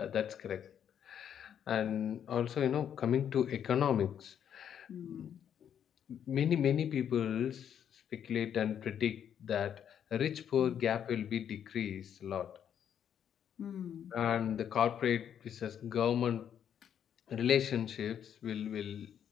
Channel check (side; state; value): right; quieter; 9.0 dB